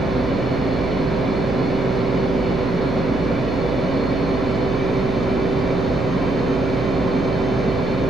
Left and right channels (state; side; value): noise; right; hum, 5 dB below the sound